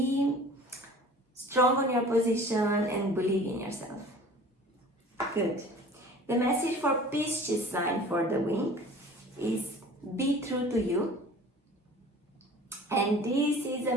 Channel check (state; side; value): normal; both; correlation 0.45